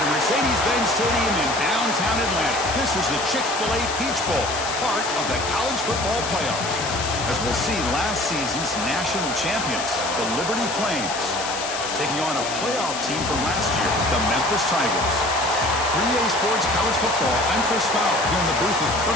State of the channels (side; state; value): left; noise; hiss, 6 dB below the sound